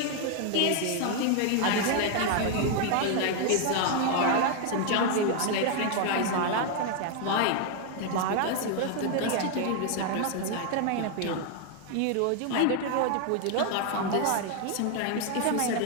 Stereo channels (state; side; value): different; both; correlation 0.01